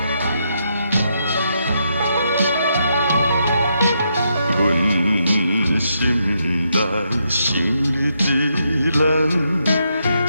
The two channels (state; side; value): inverted; both; correlation -0.79